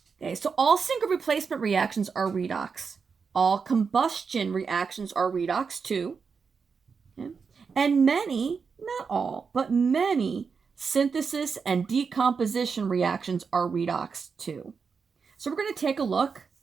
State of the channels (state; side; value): quieter; left; 5.5 dB